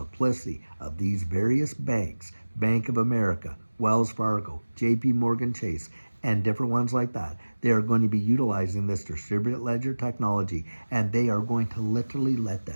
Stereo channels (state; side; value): inverted; both; correlation -1.00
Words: of these various banks, Bank of America, Wells Fargo, JP Morgan Chase, and different ones like that. They are going to be utilizing this distributed ledger technology, and they are going to literally let